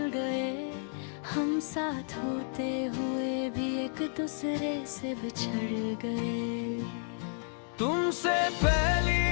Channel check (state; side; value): silent; right; 57 dB below the other